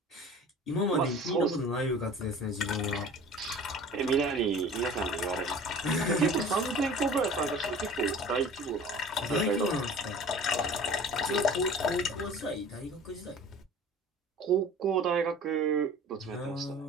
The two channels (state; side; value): normal; both; correlation 0.43